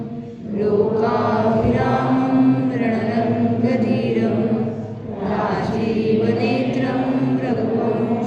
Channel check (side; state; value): both; identical; correlation 1.00